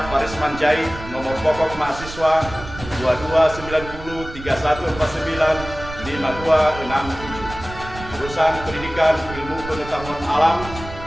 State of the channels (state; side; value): noise; right; rumble, 12 dB below the sound